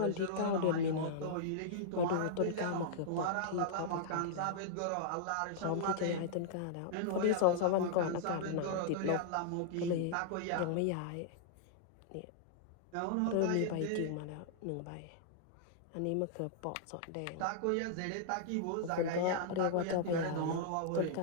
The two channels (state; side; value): different; both; correlation -0.02